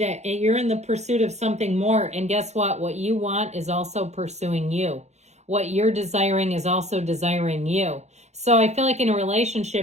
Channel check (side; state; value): left; late; 0.33 ms